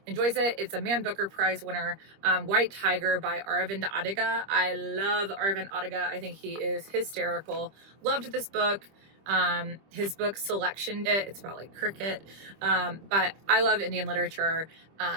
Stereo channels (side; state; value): left; late; 25 ms